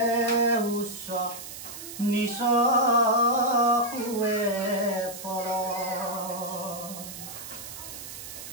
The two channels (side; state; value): right; noise; hiss, 11 dB below the sound